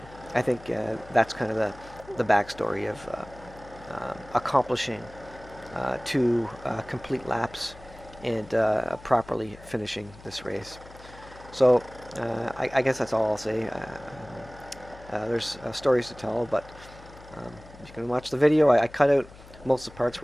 that's kind of the backstory of accomplishing 2 complete laps and properly finishing this race. So I guess that's all I'll say. There's stories to tell, but you can watch the video. I cut out most of the parts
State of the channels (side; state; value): left; noise; hum, 20 dB below the sound